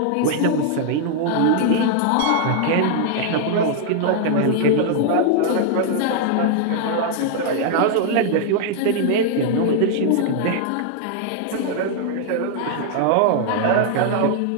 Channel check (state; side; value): different; both; correlation 0.00